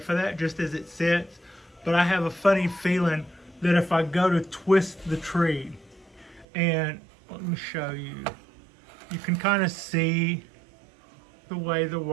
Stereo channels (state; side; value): drops out; left; at 6.5 s